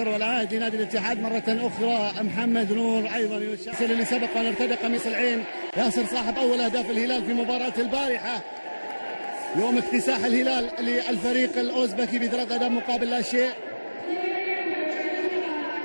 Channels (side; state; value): both; inverted; correlation -1.00